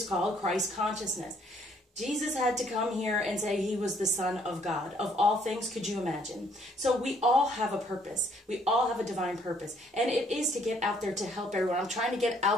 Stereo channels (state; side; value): normal; both; correlation 0.65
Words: called Christ consciousness. Jesus had to come here and say he was the Son of God. Of all things, could you imagine? So we all have a purpose. We all have a divine purpose. And it is to get out there to help everyone. I'm trying to get